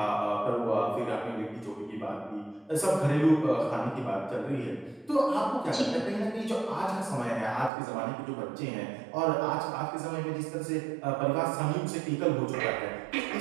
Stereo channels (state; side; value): drops out; left; at 7.7 s